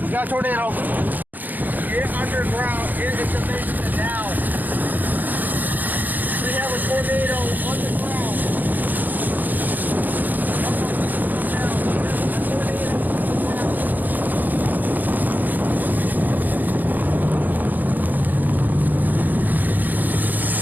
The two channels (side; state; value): left; late; 0.084 ms